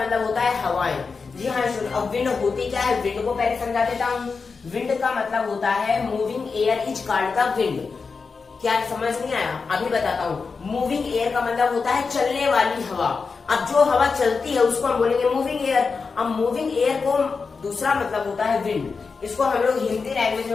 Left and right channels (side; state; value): right; quieter; 4.9 dB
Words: होता है हवाएं। जी हाँ स्टूडेंट, अब विंड होती क्या है, विंड को पहले समझा देता हूँ। विंड का मतलब होता है moving air is called the wind. क्या समझ नहीं आया? अभी बताता हूँ। मूविंग एयर का मतलब होता है चलने वाली हवा। अब जो हवा चलती है उसको हम बोलेंगे मूविंग एयर। अब मूविंग एयर को दूसरा मतलब होता है विंड। इसको हम लोग हिंदी लैंग्वेज